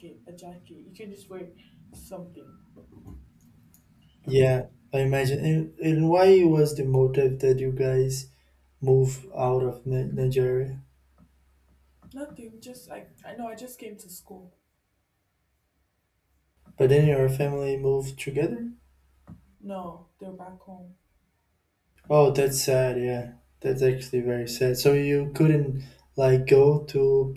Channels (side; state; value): both; identical; correlation 1.00